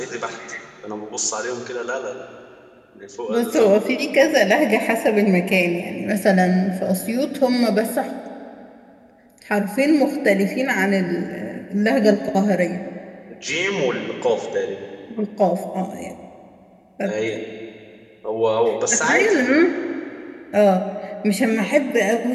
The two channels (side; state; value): both; identical; correlation 1.00